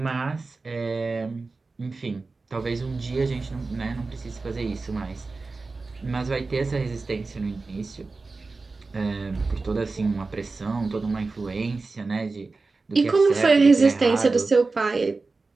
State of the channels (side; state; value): left; quieter; 3.8 dB